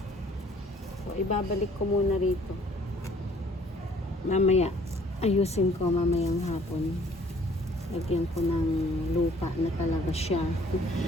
So, ibabalik ko muna rito. Mamaya. Ayusin ko mamayang hapon. Lagyan ko ng lupa na talaga siya.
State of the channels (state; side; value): normal; both; correlation 0.58